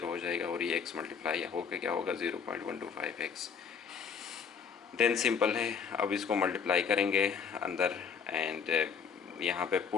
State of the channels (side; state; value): right; quieter; 6.5 dB